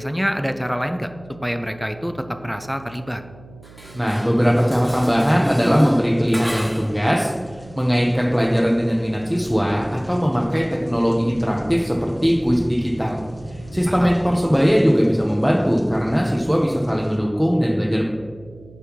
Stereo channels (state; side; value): noise; right; hum, 22 dB below the sound